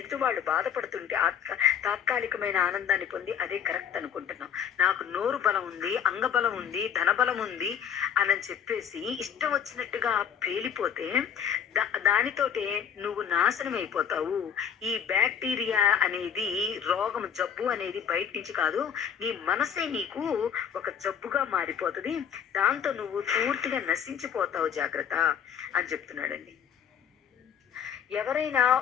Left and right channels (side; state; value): right; quieter; 8.2 dB